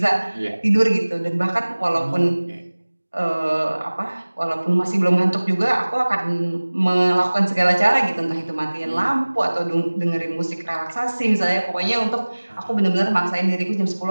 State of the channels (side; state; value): both; inverted; correlation -1.00